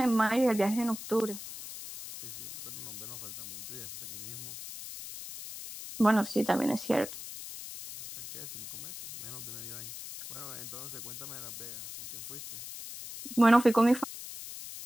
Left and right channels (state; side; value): noise; left; hiss, 10 dB below the sound